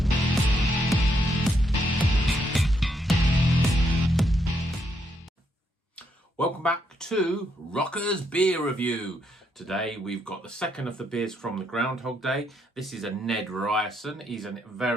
Welcome back to Rocker's Beer Review. Today we've got the second of the beers from the Groundhog Day. This is a Ned Ryerson. He's a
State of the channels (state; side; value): normal; both; correlation 0.76